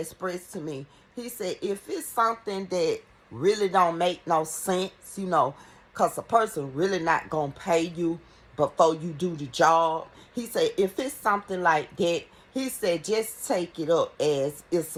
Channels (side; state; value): both; identical; correlation 1.00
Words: to me, he said, if it's something that really don't make no sense, because a person really not going to pay you before you do the job. He said, if it's something like that, he said, just take it up as it's